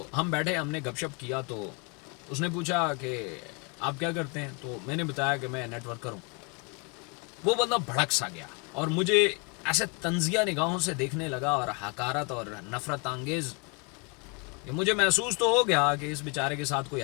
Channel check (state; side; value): quieter; right; 33.3 dB